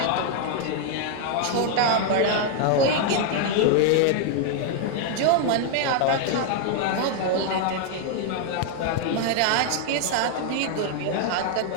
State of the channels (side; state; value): both; different; correlation 0.00